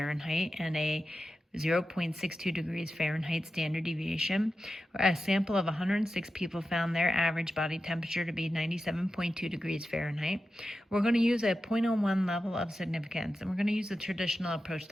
and a 0.62 degrees Fahrenheit standard deviation. A sample of 106 people found their average body temperature to be 97.2 degrees Fahrenheit. We're going to use a 0.01 level of significance, and we're going to use the traditional approach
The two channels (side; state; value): both; normal; correlation 0.91